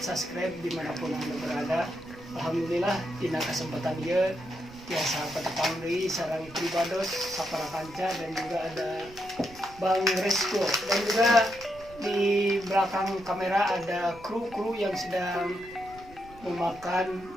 subscribe dimanapun anda berada. Alhamdulillah dina kesempatan dia tiasa petepangri sarang pribados sapara kanca dan juga ada Bang Resko dan juga di belakang kamera ada kru yang sedang memakan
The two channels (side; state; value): right; noise; rumble, 21 dB below the sound